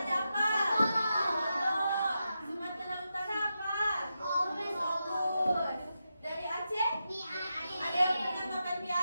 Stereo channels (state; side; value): inverted; both; correlation -0.88